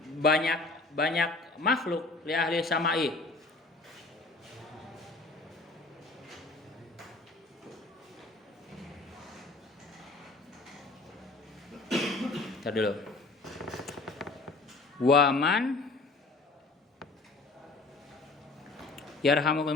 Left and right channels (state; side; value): quieter; right; 3.4 dB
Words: banyak makhluk li ahli samai Ntar dulu. Waman yarhamukum